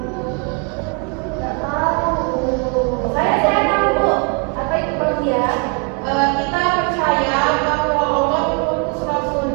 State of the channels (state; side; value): quieter; left; 36.2 dB